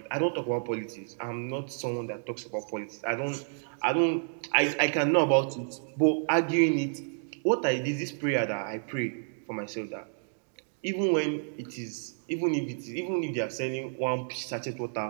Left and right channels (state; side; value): silent; left; digital silence